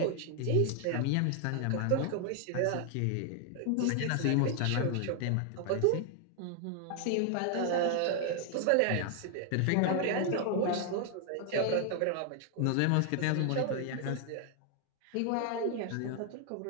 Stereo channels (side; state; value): both; different; correlation 0.00